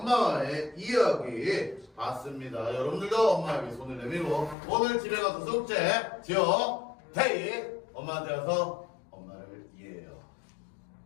이야기 봤습니다. 여러분들도 엄마에게 손을 내밀고 오늘 집에 가서 숙제 지어 태희 엄마한테 가서 엄마를 이해해요.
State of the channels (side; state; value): right; drops out; at 4.5 s